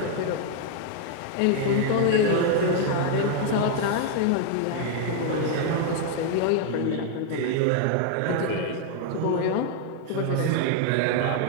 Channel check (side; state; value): both; different; correlation 0.00